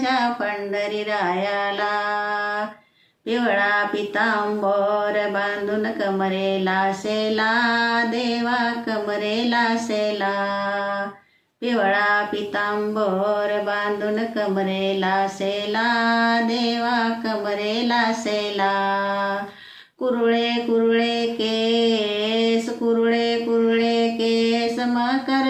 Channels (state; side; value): identical; both; correlation 1.00